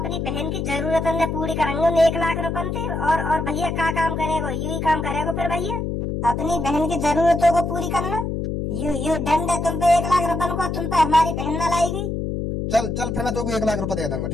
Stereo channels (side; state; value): left; noise; hum, 2 dB below the sound